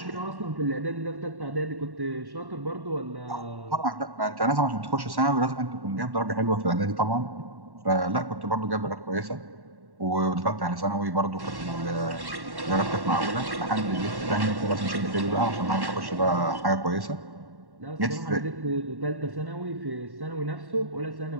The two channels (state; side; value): late; left; 1.1 ms